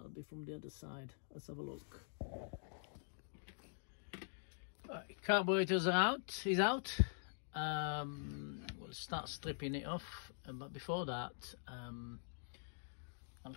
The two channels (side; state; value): right; silent; digital silence